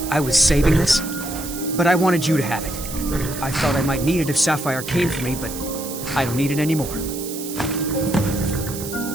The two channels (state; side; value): noise; right; hiss, 10 dB below the sound